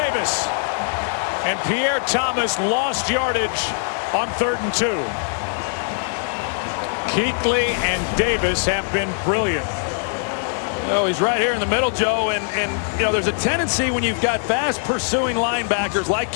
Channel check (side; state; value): right; silent; digital silence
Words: And Pierre Thomas lost yardage on 3rd and 2. Kuechly and Davis have been brilliant. Oh, he's right here in the middle, Joe, and you know, there's a tendency when you've got fast pursuing linebackers like